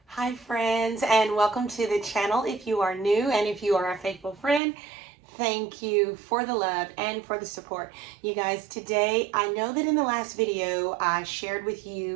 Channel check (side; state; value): left; drops out; at 4.6 s